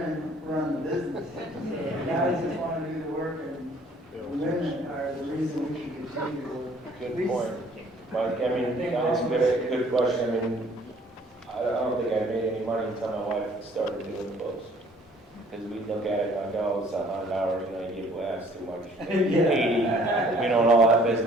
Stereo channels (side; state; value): both; normal; correlation 0.58